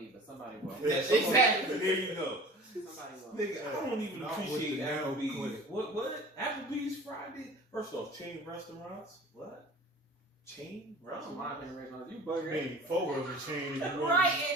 but somebody will. Yeah, Exactly. There you go. Somebody will. Nigga, I don't even Not with appreciate the nail Applebee's. clinic. What? Applebee's Friday? First off, chain restaurants? What? Chain I don't mind restaurants? paying restaurants. You I bugger. mean, Fogo's a chain. Right,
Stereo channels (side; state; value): both; normal; correlation 0.42